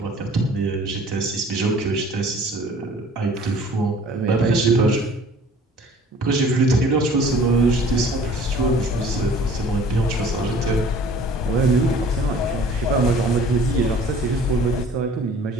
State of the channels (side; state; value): both; normal; correlation 0.50